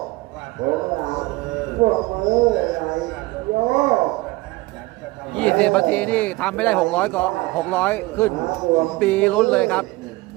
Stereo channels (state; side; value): quieter; left; 21.1 dB